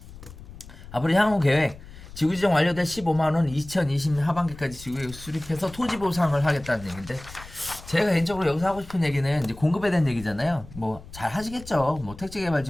앞으로 향후 계획 지구지정 완료될 15만 원 2020년 하반기까지 지구에 수립해서 토지 보상을 하겠다는 얘기인데 제가 개인적으로 여기서 하고 싶은 얘기는 이제 공급에 대한 얘기잖아요. 뭐 잘 하시겠죠. 뭐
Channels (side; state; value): left; noise; rumble, 17 dB below the sound